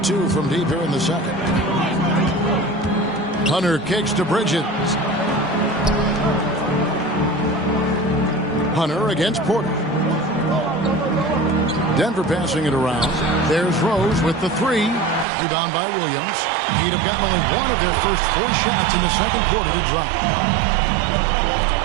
from deep here in the second. Hunter kicks to Bridges. Hunter against Porter. Denver passing it around. There's Rose with the 3. Rebound by Williams. He'd have gotten only one of their first 4 shots in the second quarter to drop.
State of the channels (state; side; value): drops out; left; at 15.2 s